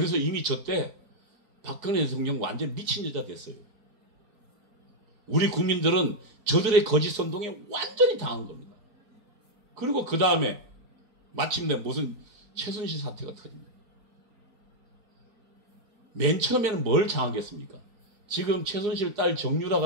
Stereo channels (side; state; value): left; late; 4.8 ms